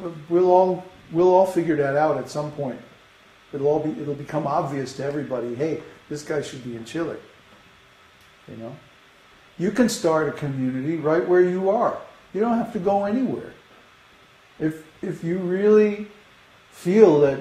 we'll all figure that out at some point. It'll become obvious to everybody, hey, this guy should be in Chile. You know? You can start a community right where you are. You don't have to go anywhere. If you really feel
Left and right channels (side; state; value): both; identical; correlation 1.00